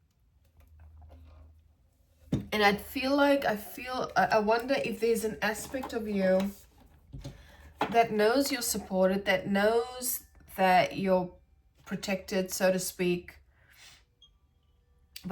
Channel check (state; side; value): identical; both; correlation 1.00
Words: And I wonder if there's an aspect of you that knows you're supported, that knows that you're protected, so to speak.